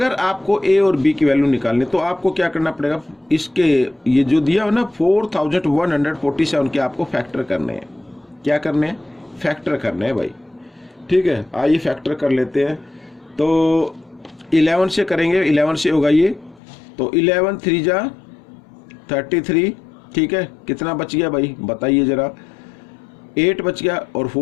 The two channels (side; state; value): right; drops out; at 16.6 s